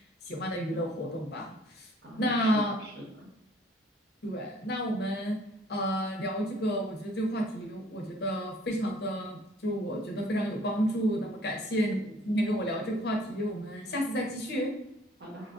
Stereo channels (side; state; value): both; normal; correlation 0.57